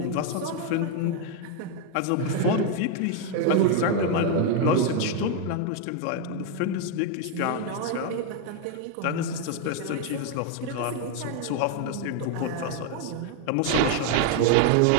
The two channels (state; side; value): different; both; correlation 0.01